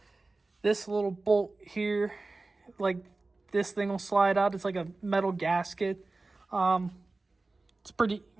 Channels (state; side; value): quieter; left; 3.4 dB